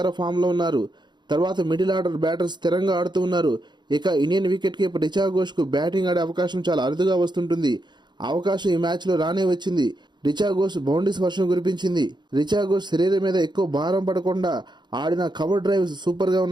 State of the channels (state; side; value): late; left; 0.21 ms